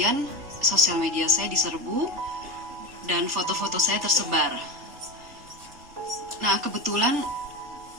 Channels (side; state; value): left; late; 3.4 ms